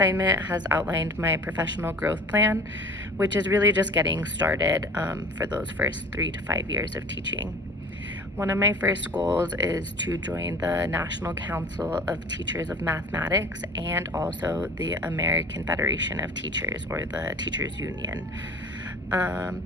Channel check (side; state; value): both; normal; correlation 0.43